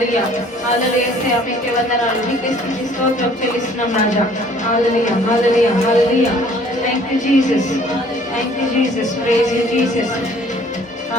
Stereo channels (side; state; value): both; normal; correlation 0.56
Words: హల్లెలూయా యేసయ్యా మీకే వందనాలు మీకే స్తుతి స్తోత్రం చెల్లిస్తున్నాం రాజా hallelujah hallelujah hallelujah thank you Jesus praise you Jesus